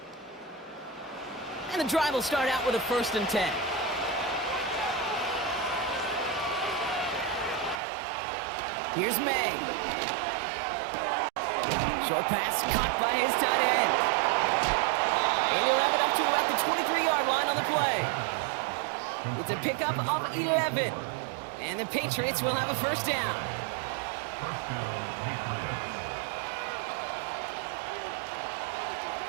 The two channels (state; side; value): drops out; left; at 7.8 s